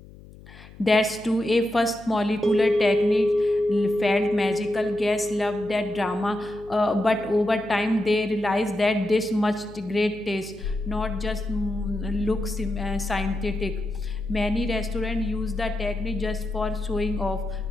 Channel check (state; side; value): noise; left; hum, 20 dB below the sound